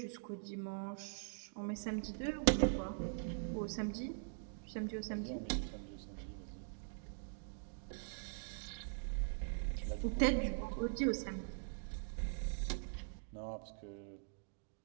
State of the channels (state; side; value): silent; left; digital silence